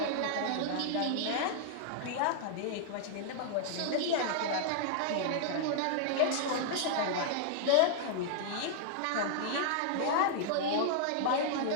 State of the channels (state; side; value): different; both; correlation -0.01